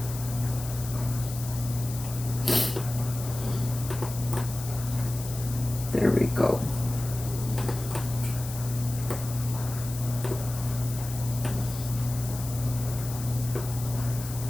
There we go.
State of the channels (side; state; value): left; noise; hiss, 11 dB below the sound